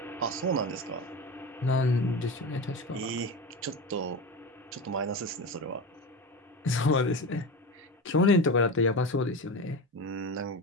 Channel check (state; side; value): normal; both; correlation 0.24